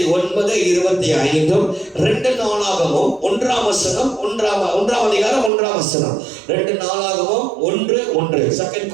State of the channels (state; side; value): drops out; left; at 5.5 s